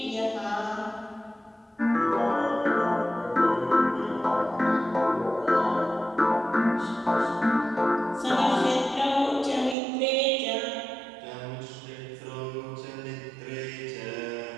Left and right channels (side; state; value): left; drops out; at 9.8 s